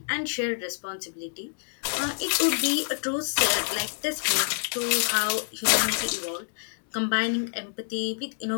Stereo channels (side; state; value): right; silent; digital silence